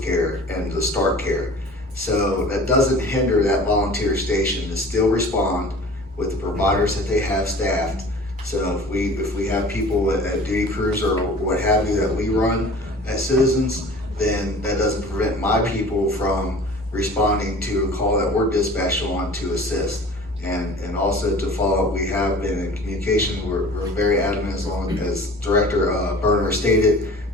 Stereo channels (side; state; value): both; normal; correlation 0.43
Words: care and to start care. So that doesn't hinder that volunteer station to still respond with the providers that they have staffed. So if we have people at duty crews or what have you that we run as Citizens, then that doesn't prevent my people from responding to a call that we're dispatched on to assist. And also to follow up, we have been in communication. We're very adamant, as Director Berner stated,